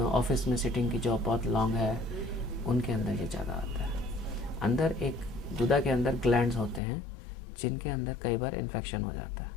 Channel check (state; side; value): drops out; right; at 6.8 s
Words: ऑफिस में सिटिंग की जॉब बहुत लॉन्ग है, उनके अंदर ये ज़्यादा आता है। अंदर एक गुदा के अंदर ग्लैंड्स होते हैं जिनके अंदर कई बार इन्फेक्शन हो जाता है।